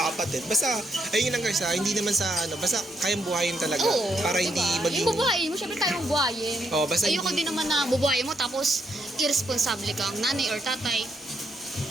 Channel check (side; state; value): both; normal; correlation 0.76